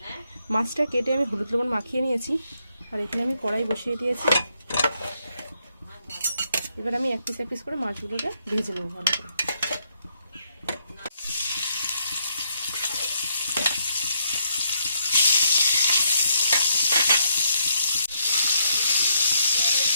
মাছটা কেটে আমি হলুদ লবণ মাখিয়ে নিয়েছি, আর এখানে আমি কড়াই বসিয়ে দিয়েছি। এবার আমি এক পিস করে মাছগুলোকে ভেজে নেব ভালো করে।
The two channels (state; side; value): inverted; both; correlation -0.75